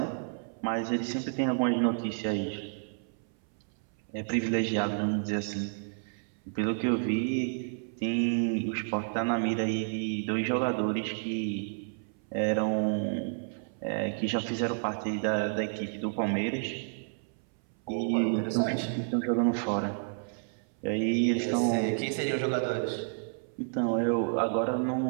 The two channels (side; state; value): left; silent; 57 dB below the other